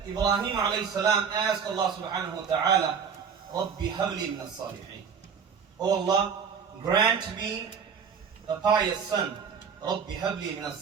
Ibrahim alayhi salam asked Allah subhanahu wa ta'ala, Rabbi habli min as-salihin, Oh Allah, grant me a pious son. Rabbi habli min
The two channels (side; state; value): left; quieter; 6.5 dB